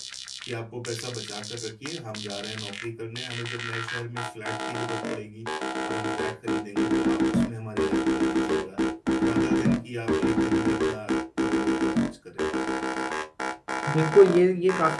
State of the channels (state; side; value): identical; both; correlation 1.00